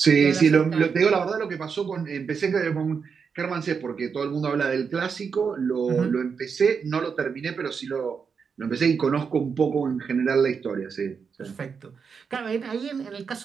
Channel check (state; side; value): quieter; left; 6.0 dB